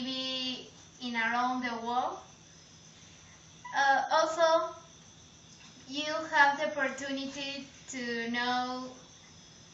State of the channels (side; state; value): both; identical; correlation 1.00